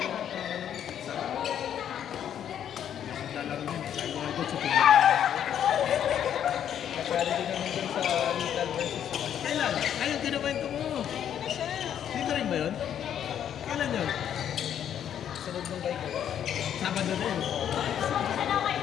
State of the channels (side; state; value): right; quieter; 9.6 dB